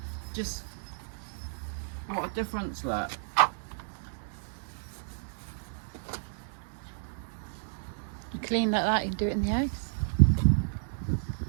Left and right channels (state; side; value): silent; left; 57 dB below the other